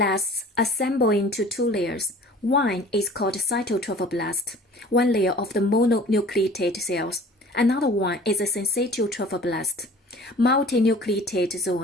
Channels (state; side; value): normal; both; correlation 0.46